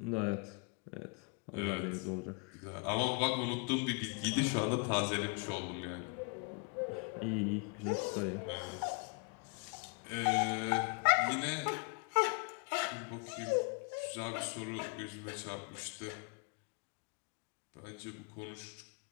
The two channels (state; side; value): quieter; right; 35.1 dB